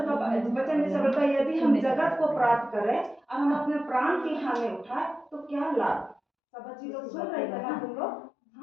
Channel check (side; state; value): right; drops out; at 6.2 s